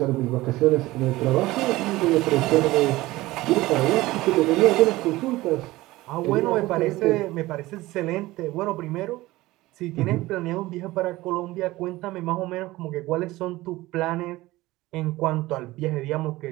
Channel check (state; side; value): quieter; left; 18.6 dB